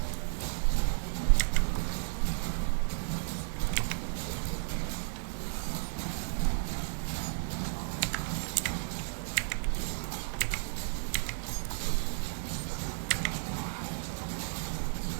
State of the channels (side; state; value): left; silent; digital silence